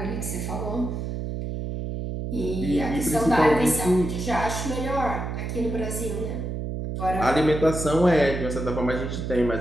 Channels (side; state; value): right; noise; hum, 4 dB below the sound